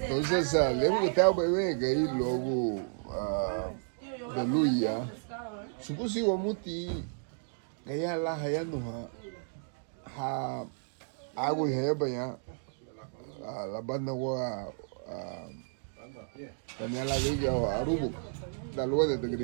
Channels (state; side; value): silent; left; digital silence